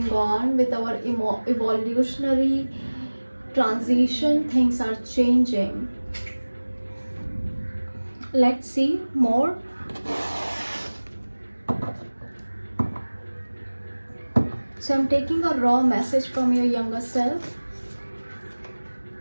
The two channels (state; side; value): inverted; both; correlation -1.00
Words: on with our evolutionary transition, things are changing. Let's see more. So I'm taking a raw message from your younger self.